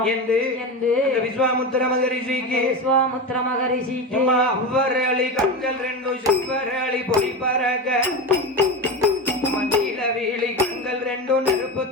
என்று விஸ்வாமுத்திர மகரிஷிக்கு அவ்வரளி கண்கள் ரெண்டும் சிவரளி பொடி பறக்க மண்டியில வீழி கண்கள் ரெண்டும் நெருப்பு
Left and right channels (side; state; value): both; normal; correlation 0.21